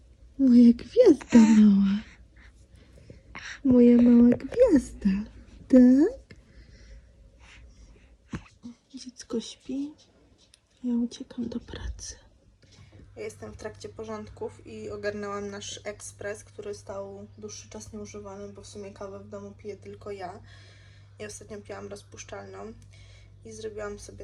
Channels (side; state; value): both; identical; correlation 1.00